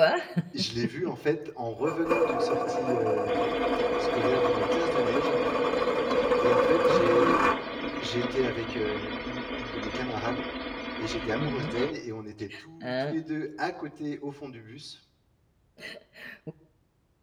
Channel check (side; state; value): both; identical; correlation 1.00